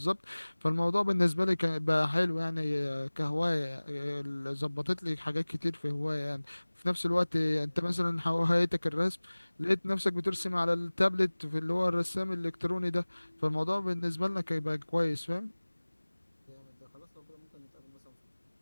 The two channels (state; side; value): inverted; both; correlation -1.00